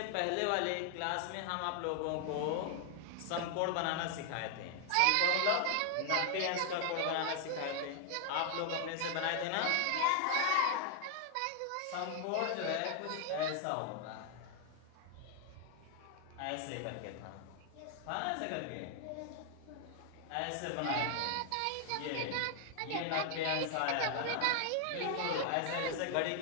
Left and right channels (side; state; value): both; different; correlation 0.00